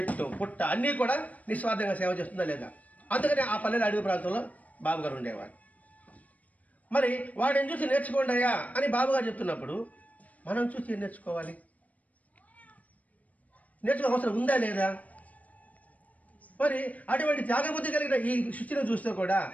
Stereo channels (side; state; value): right; late; 0.072 ms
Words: పుట్ట అన్నీ కూడా నిస్వార్థంగా సేవ చేస్తుందా లేదా? అందుకని ఆ పల్లెల అడవి ప్రాంతంలో బాబుగారు ఉండేవాడు. మరి వాడిని చూసి నేర్చుకోండి అయ్యా అని బాబుగారు చెప్తున్నప్పుడు మనం చూసి ఏం నేర్చుకోవాలి? నేర్చుకో అవసరం ఉందా లేదా? మరి అటువంటి త్యాగబుద్ధి కలిగిన ఈ సృష్టిని చూస్తే కూడా